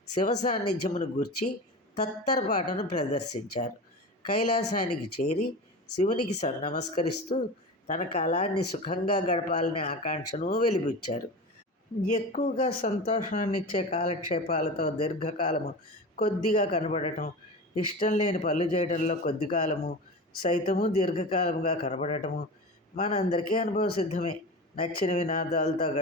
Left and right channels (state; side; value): normal; both; correlation 0.29